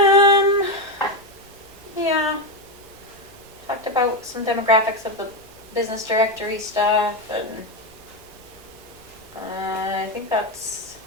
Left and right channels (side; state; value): right; noise; rumble, 27 dB below the sound